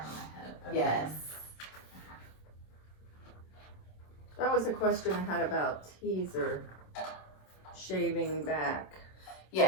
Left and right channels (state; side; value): late; right; 27 ms